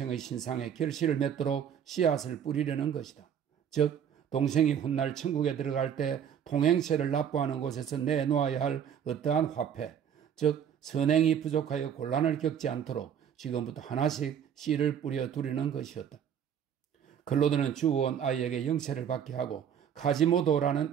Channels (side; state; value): left; quieter; 8.6 dB